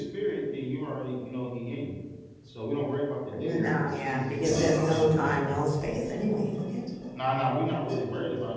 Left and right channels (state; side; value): identical; both; correlation 1.00